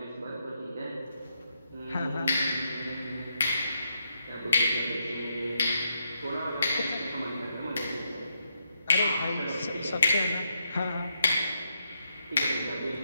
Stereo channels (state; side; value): inverted; both; correlation -0.80